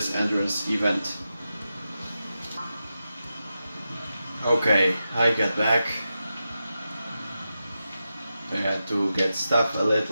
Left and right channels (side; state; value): both; inverted; correlation -0.90